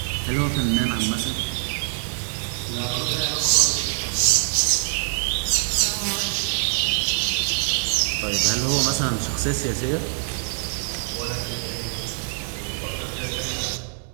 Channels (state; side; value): silent; left; digital silence